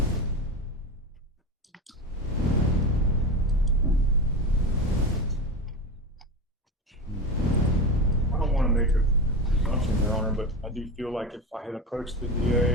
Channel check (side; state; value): both; normal; correlation 0.22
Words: I don't want to make a presumption, Your Honor, but I do feel like if I had approached the